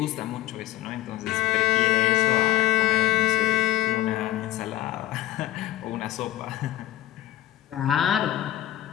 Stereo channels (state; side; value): quieter; right; 14.2 dB